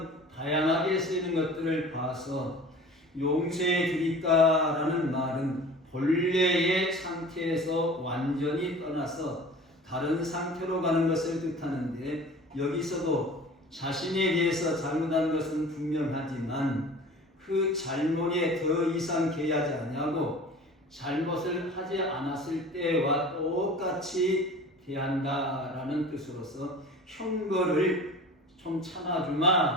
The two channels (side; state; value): both; normal; correlation 0.41